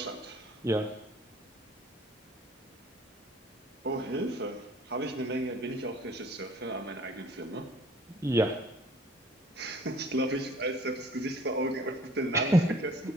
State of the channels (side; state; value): both; normal; correlation 0.53